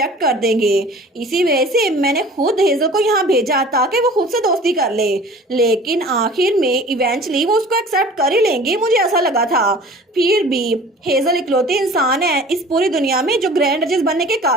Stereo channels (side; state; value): both; normal; correlation 0.45